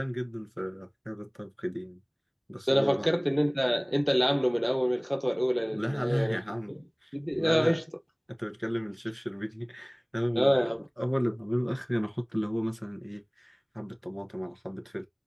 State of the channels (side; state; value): both; identical; correlation 1.00